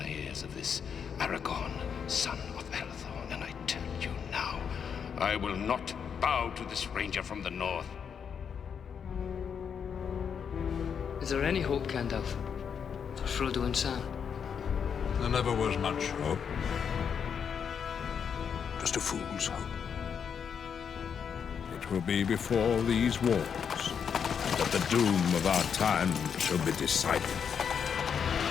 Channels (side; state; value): right; quieter; 7.2 dB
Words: ears of this Aragorn, son of Arathorn, and I tell you now, I will not bow to this ranger from the north. Is there any hope, Gandalf, for Frodo and Sam? There never was much hope. Just a fool's hope. It will be before these wars that the doom of our time shall be decided.